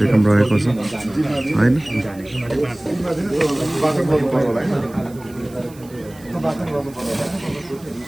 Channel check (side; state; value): right; noise; hiss, 24 dB below the sound